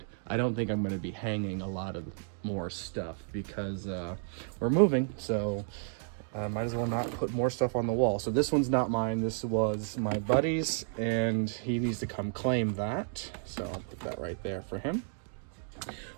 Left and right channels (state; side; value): silent; left; digital silence